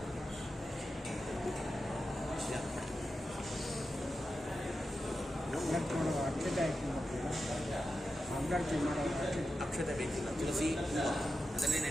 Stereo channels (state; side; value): normal; both; correlation 0.90